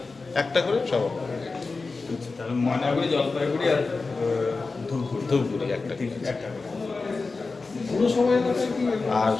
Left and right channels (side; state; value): right; quieter; 4.0 dB